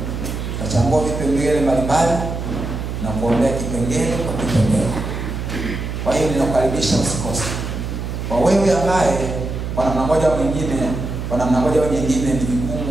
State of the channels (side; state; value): right; noise; hum, 5 dB below the sound